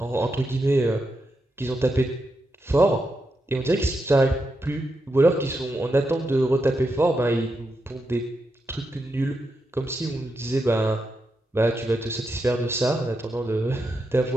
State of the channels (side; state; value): both; normal; correlation 0.85